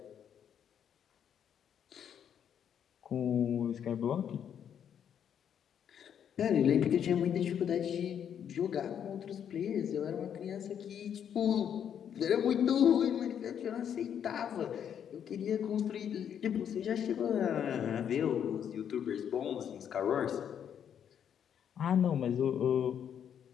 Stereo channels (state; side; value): quieter; right; 8.7 dB